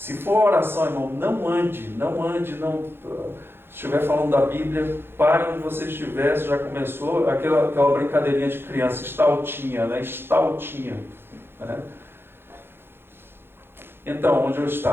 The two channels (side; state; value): left; late; 0.11 ms